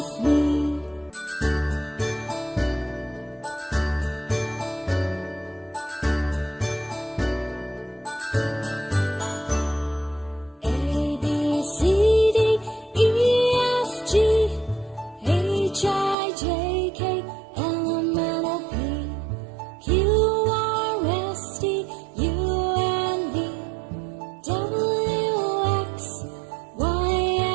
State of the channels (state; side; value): drops out; left; at 16.2 s